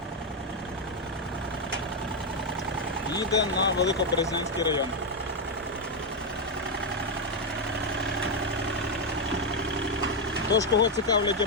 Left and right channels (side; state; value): both; normal; correlation 0.04